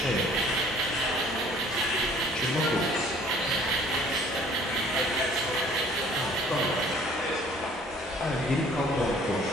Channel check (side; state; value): both; normal; correlation 0.54